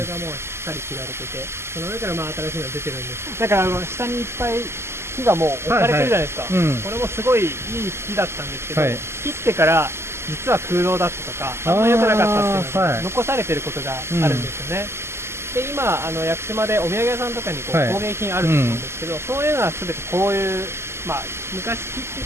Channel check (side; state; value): left; late; 0.12 ms